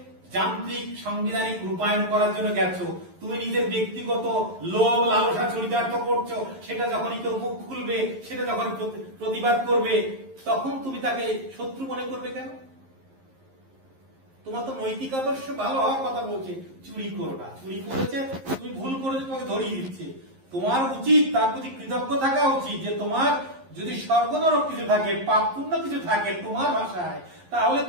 যান্ত্রিক সাংবিধানিক রূপায়ণ করার জন্য গেছো, তুমি নিজের ব্যক্তিগত লোভ লালসা চরিতার্থ করছো, সেটা যখনই কেউ মুখ খুলবে, সেটা যখন প্রতিবাদ করবে, তখন তুমি তাকে শত্রু মনে করবে কেন? তোমার তো নৈতিক আদর্শ ভালো হওয়ার কথা বলছে, চুরি করো না, চুরি করেছে, তুমি ভুল করেছো, তোমাকে ধরিয়ে দিচ্ছে। তোমার উচিত তার প্রতি কৃতজ্ঞ থাকা উচিত যে তোমার যদি স্বর্গ নরক কিছু থাকে, পাপ পুণ্য কিছু থাকে তোমার ভাষায়, তাহলে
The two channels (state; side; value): late; left; 11 ms